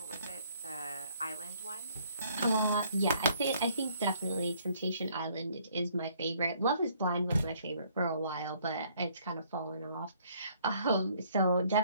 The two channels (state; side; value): inverted; both; correlation -0.63